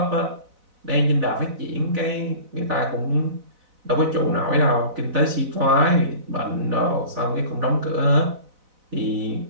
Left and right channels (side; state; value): left; late; 4.0 ms